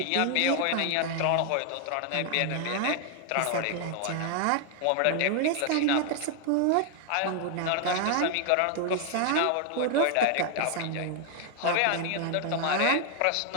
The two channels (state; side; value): different; both; correlation 0.00